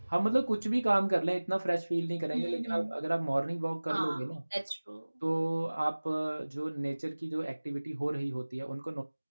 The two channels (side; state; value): both; inverted; correlation -1.00